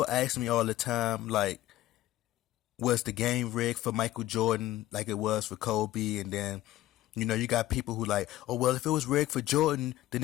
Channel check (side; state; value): right; quieter; 15.3 dB